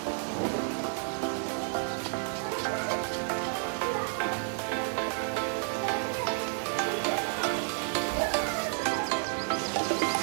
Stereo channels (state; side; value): silent; left; 55 dB below the other